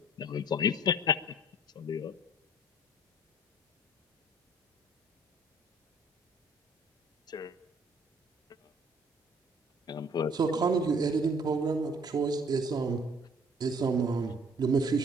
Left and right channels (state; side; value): normal; both; correlation 0.56